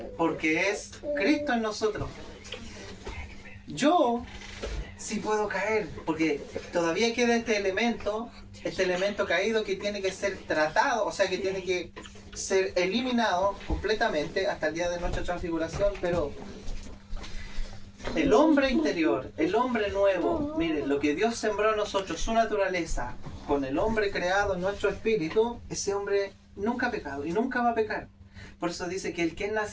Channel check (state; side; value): identical; both; correlation 1.00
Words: porque es Cristo en nosotros. Yo sí puedo caer, porque todavía queda este elemento caído que tiene que ser tratado, o sea que tiene que ser eliminado completamente hasta el día de nuestra transfiguración, pero el hombre interior, el hombre nuevo, miren, lo que Dios sembró en nosotros, su naturaleza, con el hombre creado en nuestro espíritu, ese hombre nunca ha pecado y nunca va a pecar. Por eso dice que el que es